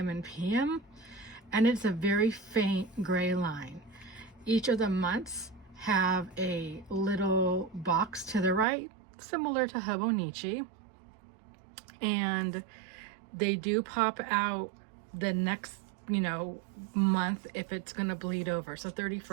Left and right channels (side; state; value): left; drops out; at 8.7 s